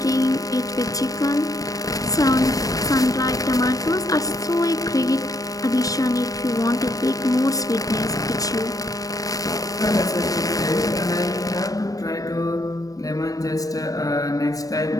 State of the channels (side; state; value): right; late; 0.17 ms